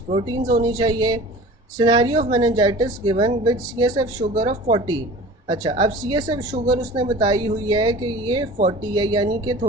प्रोटीन्स होनी चाहिए। Scenario of meningitis given with CSF sugar of 40। अच्छा, अब CSF शुगर उसने बताई हुई है कि ये 40 है, यानी कि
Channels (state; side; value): normal; both; correlation 0.41